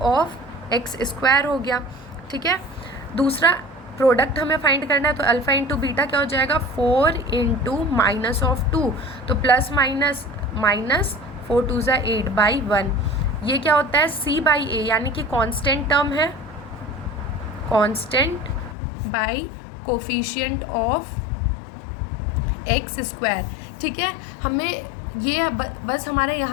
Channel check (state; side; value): drops out; right; at 18.8 s